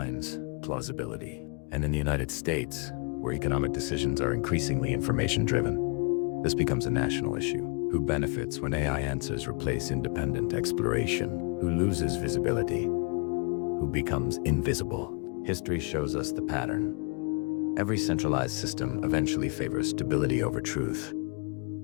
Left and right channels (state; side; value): quieter; right; 35.7 dB